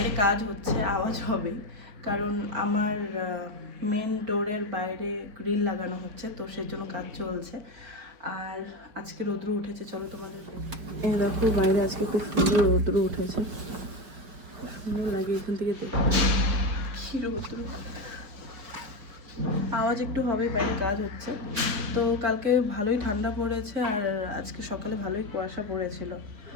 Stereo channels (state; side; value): late; left; 5.0 ms